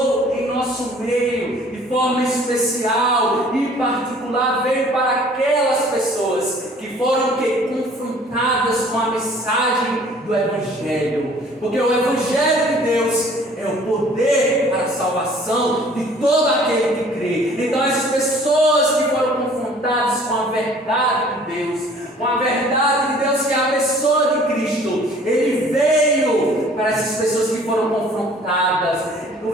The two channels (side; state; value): both; normal; correlation 0.53